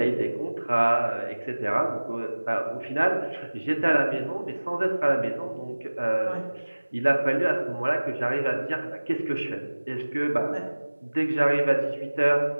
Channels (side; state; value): both; inverted; correlation -1.00